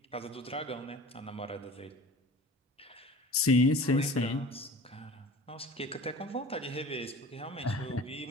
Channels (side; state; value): both; normal; correlation 0.40